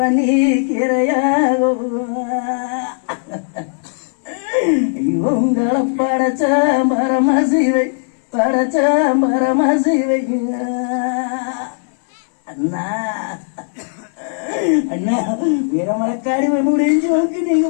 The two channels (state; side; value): silent; right; 68 dB below the other